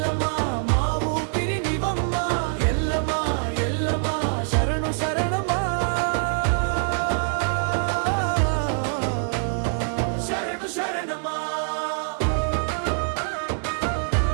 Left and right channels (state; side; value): silent; left; digital silence